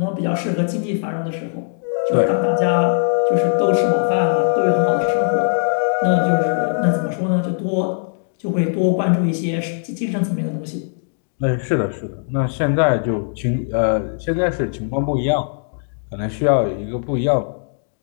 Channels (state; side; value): silent; right; digital silence